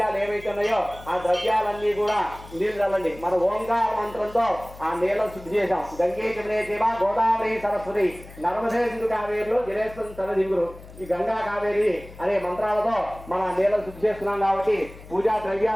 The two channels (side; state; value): left; noise; hum, 18 dB below the sound